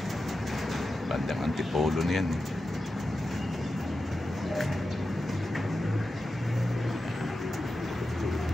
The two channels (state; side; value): normal; both; correlation 0.91